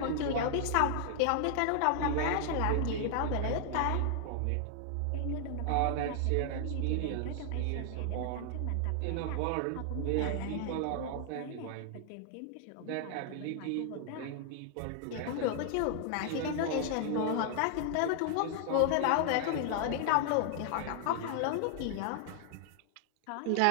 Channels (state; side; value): different; both; correlation 0.00